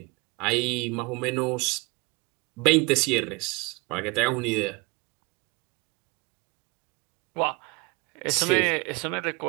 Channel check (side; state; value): left; quieter; 26.8 dB